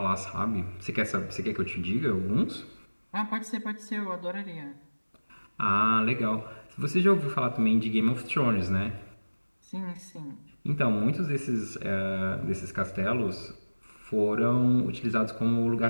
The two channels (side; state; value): both; inverted; correlation -1.00